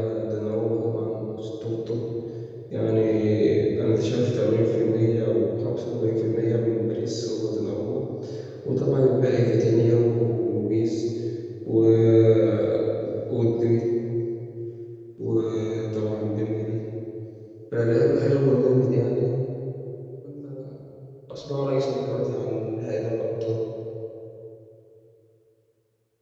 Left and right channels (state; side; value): identical; both; correlation 1.00